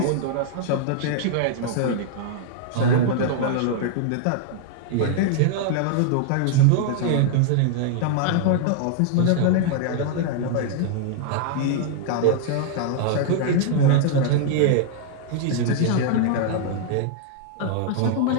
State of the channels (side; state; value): both; different; correlation 0.00